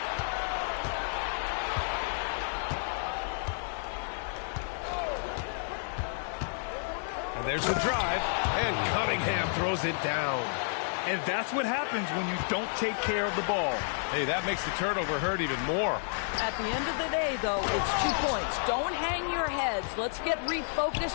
And there's the drive. And Cunningham throws it down. And that's what happens when you don't take care of the ball. Hey, that makes the turnover hurt even more. At the end of the day, though, it's 2 points. Don't hang your heads. Let's get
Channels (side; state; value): right; silent; 57 dB below the other